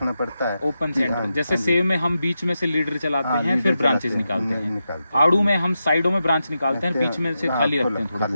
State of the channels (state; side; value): inverted; both; correlation -0.88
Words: पड़ता है। ओपन कि- सेंटर, हाँ, जैसे हाँ जी। सेव में हम बीच में से लीडर चलाते हाँ, हैं, लीडर फिर ब्रांचेस चलाते हैं, निकालते हैं। निकालते आड़ू में हम साइडों में ब्रांच निकालते हैं, बीच में से हाँ, खाली रखते खुला- हैं थोड़ा खाली